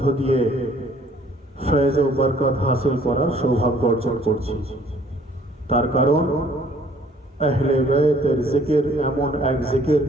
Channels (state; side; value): normal; both; correlation 0.58